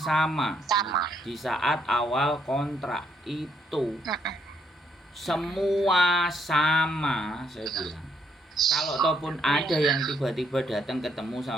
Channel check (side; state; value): both; normal; correlation 0.72